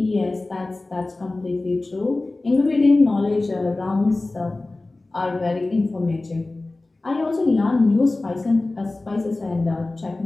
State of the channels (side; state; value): right; quieter; 3.0 dB